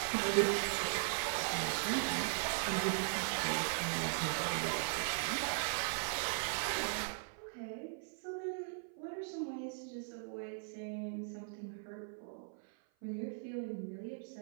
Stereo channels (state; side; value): silent; left; 52 dB below the other